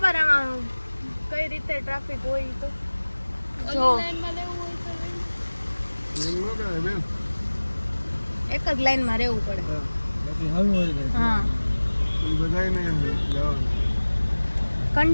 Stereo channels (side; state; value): both; inverted; correlation -1.00